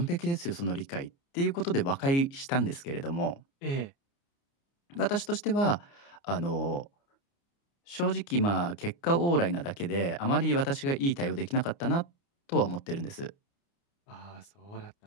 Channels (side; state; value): right; late; 29 ms